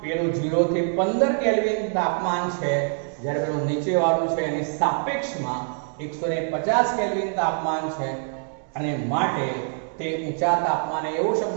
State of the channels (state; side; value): silent; left; 57 dB below the other